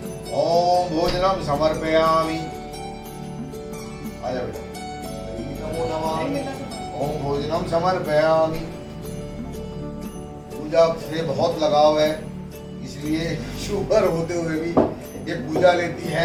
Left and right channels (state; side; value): identical; both; correlation 1.00